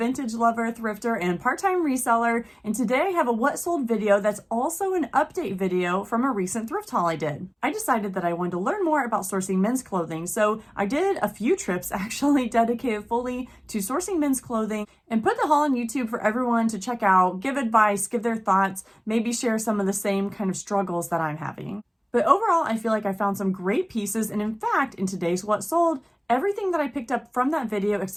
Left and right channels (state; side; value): identical; both; correlation 1.00